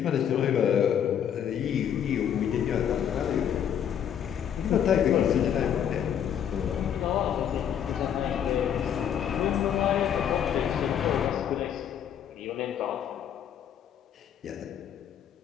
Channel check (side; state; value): right; quieter; 9.1 dB